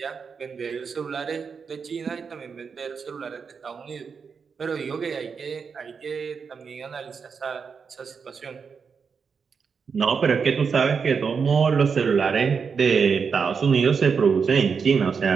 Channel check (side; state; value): left; quieter; 5.8 dB